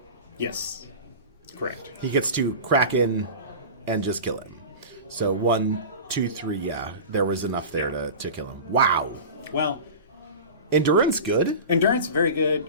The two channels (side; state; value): both; inverted; correlation -0.32